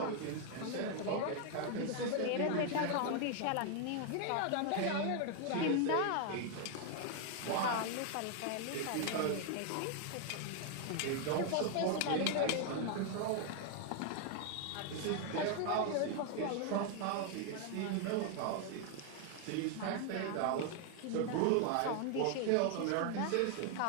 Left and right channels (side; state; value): both; different; correlation 0.00